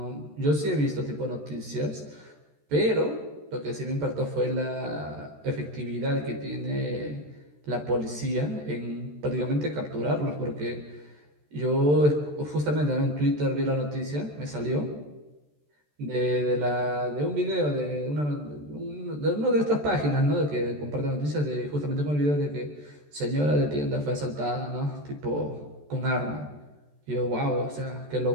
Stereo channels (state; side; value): late; left; 14 ms